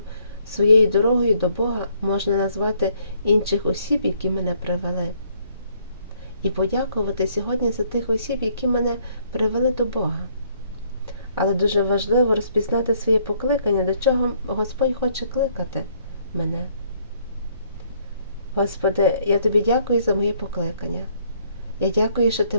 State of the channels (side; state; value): both; inverted; correlation -0.66